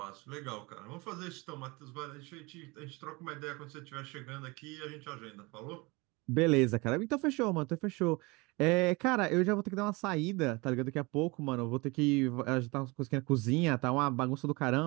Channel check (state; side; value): quieter; left; 25.5 dB